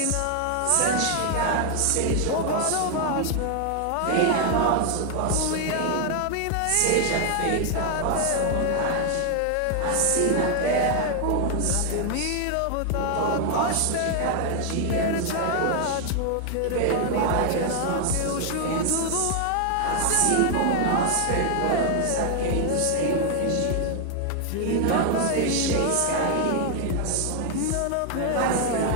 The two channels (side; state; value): both; different; correlation 0.00